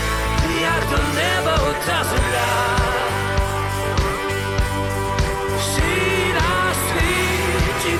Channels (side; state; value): both; identical; correlation 1.00